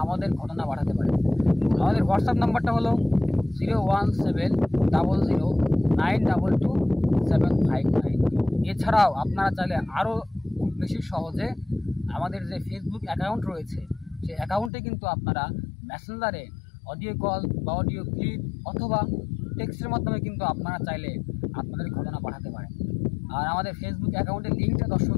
আমাদের ঘটনা পাঠাতে পারেন। আমাদের হোয়াটসঅ্যাপ নাম্বারটা হলো 01700922759। এছাড়াও আপনারা চাইলে আরও খুব বেশি সহজে আমাদের যে ফেসবুক অ্যাকাউন্ট রয়েছে সেই অ্যাকাউন্টে কিন্তু আপনারা মেসেঞ্জারে অডিও কল বা অডিও ক্লিপ অথবা টেক্সটের মাধ্যমে কিন্তু আপনারা চাইলে আপনাদের ঘটনা পাঠাতে পারেন। আর আমাদের ফেসবুক অ্যাকাউন্টের লিঙ্কটা দর্শক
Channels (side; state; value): right; drops out; at 14.7 s